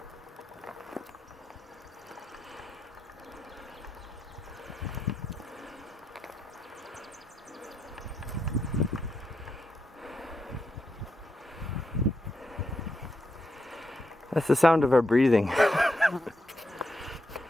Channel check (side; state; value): both; normal; correlation 0.83